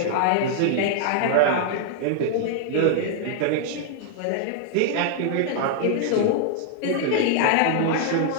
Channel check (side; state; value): both; different; correlation -0.01